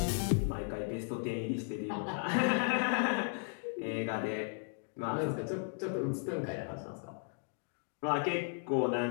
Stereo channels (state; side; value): silent; right; 54 dB below the other